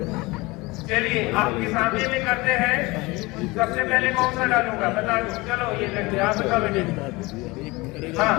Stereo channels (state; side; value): quieter; right; 22.9 dB